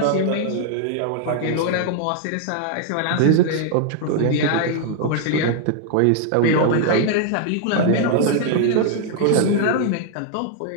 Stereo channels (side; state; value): both; different; correlation 0.00